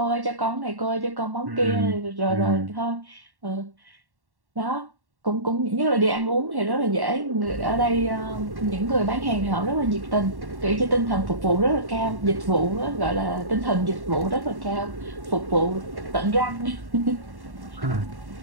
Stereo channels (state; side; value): late; left; 1.1 ms